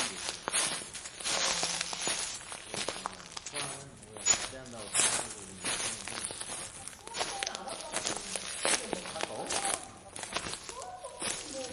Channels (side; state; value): both; identical; correlation 1.00